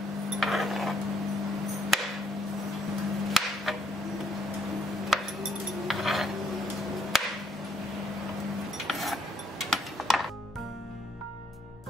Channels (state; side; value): normal; both; correlation 0.67